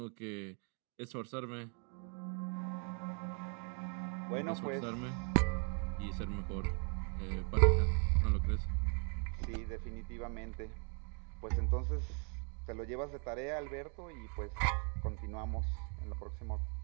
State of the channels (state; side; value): quieter; left; 37.2 dB